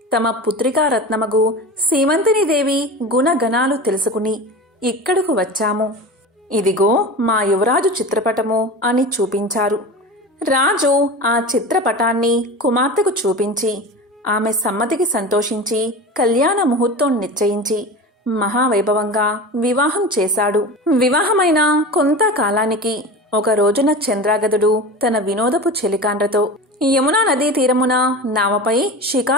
తమ పుత్రికా రత్నమగు సీమంతిని దేవి గుణగణాలు తెలుసుకుని ఇక్కడకు వచ్చాము. ఇదిగో మా యువరాజు చిత్రపటము అని చూపించారు. రాజు ఆ చిత్రపటాన్ని కుమార్తెకు చూపించి ఆమె సమ్మతికి సంతోషించి కళ్యాణ ముహూర్తం నిశ్చయించి మహావైభవంగా వివాహం చేశాడు. వివాహమైన కొంతకాలానికి ఒక రోజున చంద్రాగదుడు తన వినోదపు చెలికాండ్రతో యమునా నదీ తీరమున నావపై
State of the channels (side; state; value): both; normal; correlation 0.30